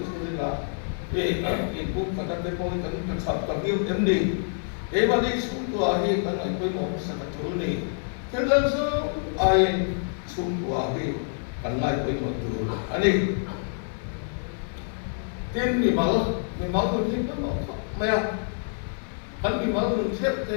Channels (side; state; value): right; silent; 60 dB below the other